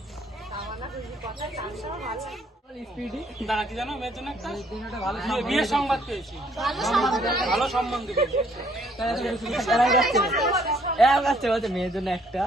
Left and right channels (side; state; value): both; normal; correlation 0.65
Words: দাঁড়া, কি জানো মেয়ের জন্য একটা বিয়ের সংবাদ পেয়েছি। ভালো সম্বন্ধ পেয়েছি। মেয়ের জন্য একটা